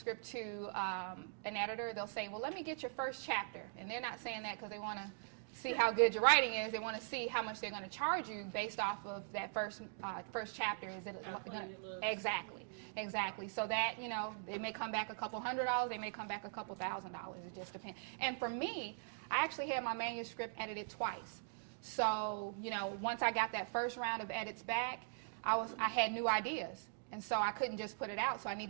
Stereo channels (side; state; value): left; silent; digital silence